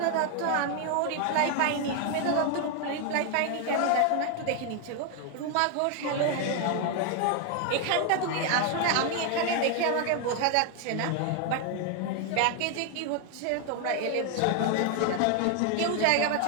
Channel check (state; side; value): different; both; correlation 0.01